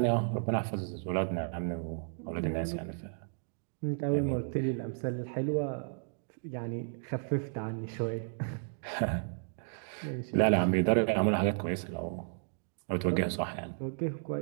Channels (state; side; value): silent; left; digital silence